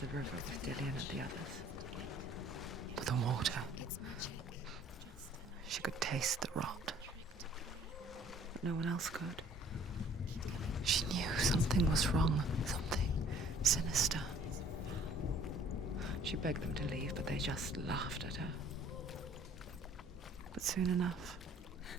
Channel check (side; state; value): both; normal; correlation 0.56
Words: river with Dillian and the others. With the water. She could taste the rot. But no one else could. She knew something was wrong. Something sinister. She begged them to leave, but they just laughed at her. But soon enough,